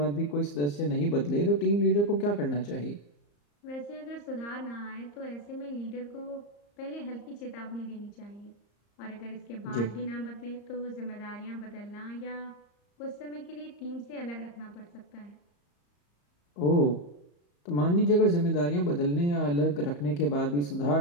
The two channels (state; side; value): late; right; 34 ms